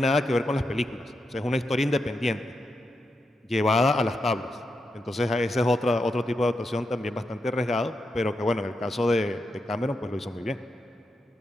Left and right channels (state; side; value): normal; both; correlation 0.85